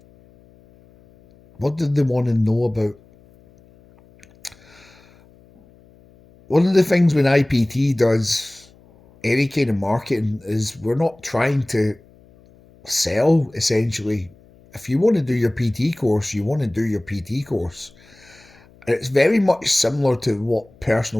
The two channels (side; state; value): left; noise; hum, 28 dB below the sound